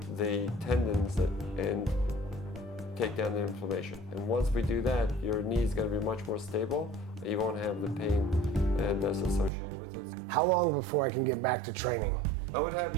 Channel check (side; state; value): left; drops out; at 9.5 s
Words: the tendons and take down the inflammation. And once we do that, your knee is going to be much more stable, and you won't have the pain that's associated with it. How long before I can get back to training? I would have